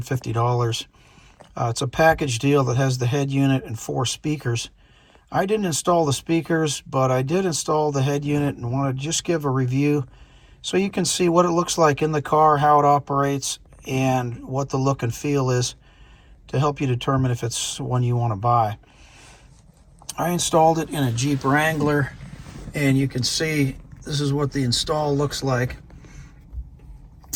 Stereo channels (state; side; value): identical; both; correlation 1.00